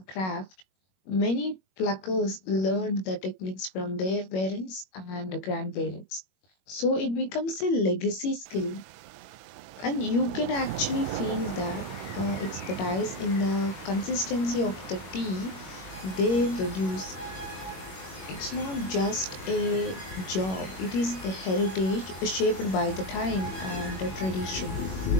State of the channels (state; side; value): late; right; 21 ms